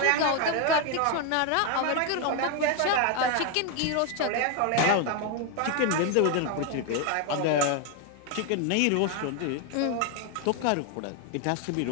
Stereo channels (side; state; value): both; different; correlation 0.01